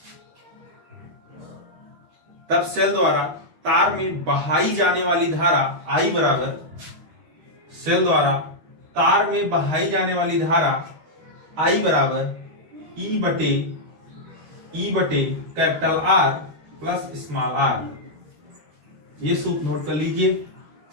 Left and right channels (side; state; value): left; late; 12 ms